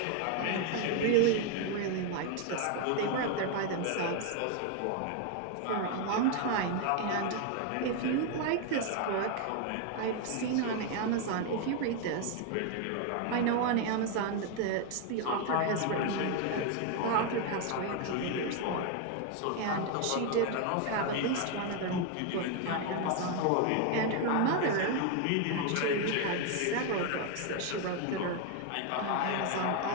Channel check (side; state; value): both; different; correlation 0.01